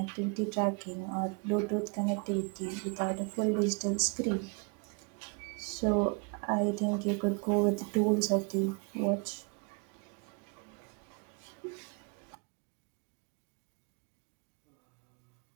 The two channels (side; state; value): left; quieter; 33.3 dB